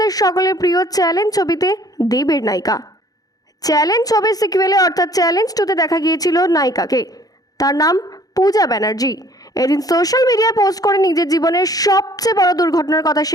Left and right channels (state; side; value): late; right; 0.18 ms